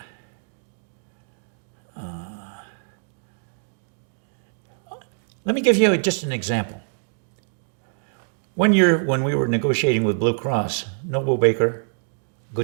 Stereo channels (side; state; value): left; silent; digital silence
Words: let me give you just an example. When we were negotiating with Blue Cross, Noble Baker,